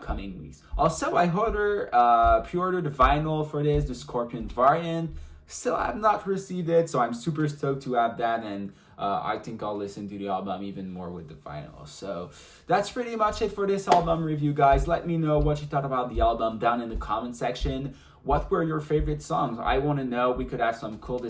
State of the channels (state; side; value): identical; both; correlation 1.00